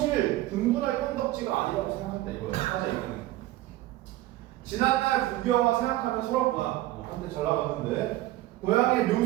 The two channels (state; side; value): quieter; left; 16.2 dB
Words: 분분할 건덕지가 아니라고 생각한다 이거예요. 사실 이거는 지난날 구경화 생각하면 서럽구나. 한때 잘 나갔는데 고향의